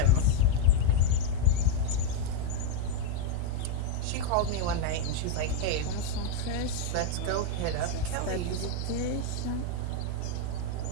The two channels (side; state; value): both; different; correlation 0.01